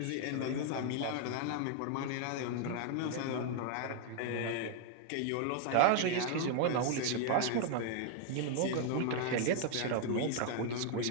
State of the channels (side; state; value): both; different; correlation 0.00